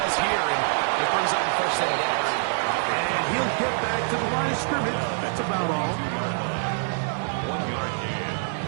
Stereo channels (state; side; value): silent; left; digital silence